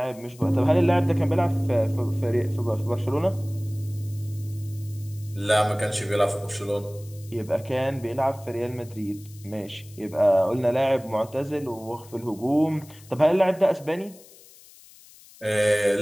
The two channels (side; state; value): left; noise; hiss, 23 dB below the sound